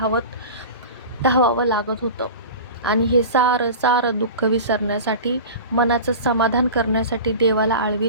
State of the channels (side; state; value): both; inverted; correlation -0.33